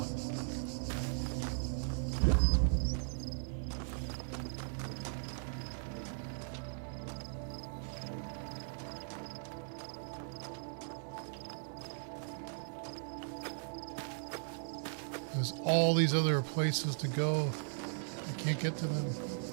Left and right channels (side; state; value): left; silent; digital silence